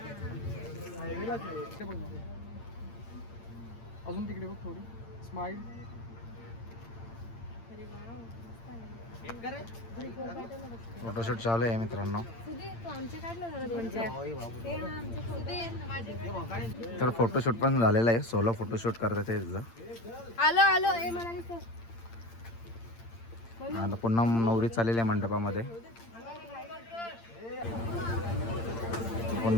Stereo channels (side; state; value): right; late; 8.8 ms